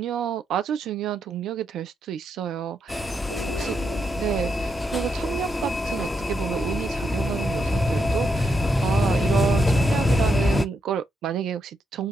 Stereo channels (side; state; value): both; normal; correlation 0.81